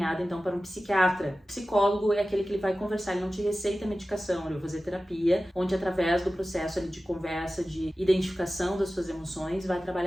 então para um psiquiatra. O psicólogo é aquele que ele vai conversar, ele não te receita medicação, ele vai fazer terapia, onde através do processo ali de conversa, de identificação das suas emoções, vai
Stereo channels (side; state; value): both; normal; correlation 0.95